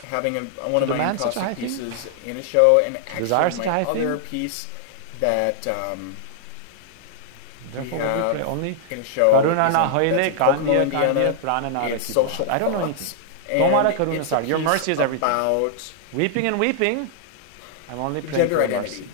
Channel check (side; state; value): both; different; correlation -0.01